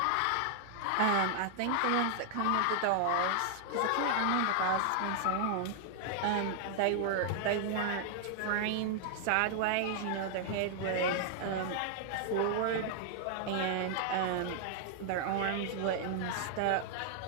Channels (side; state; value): both; different; correlation -0.01